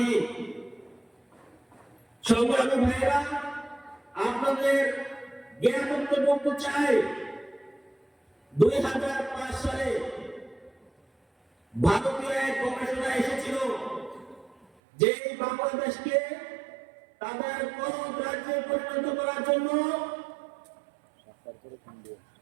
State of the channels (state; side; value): drops out; left; at 14.7 s